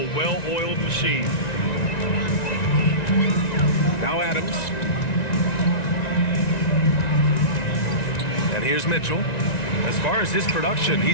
well-oiled machine. Now Adams. And here's Mitchell. As far as his production,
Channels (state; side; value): late; right; 1.9 ms